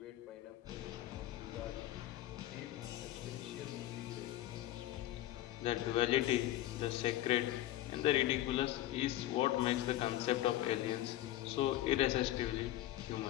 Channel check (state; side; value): quieter; right; 14.7 dB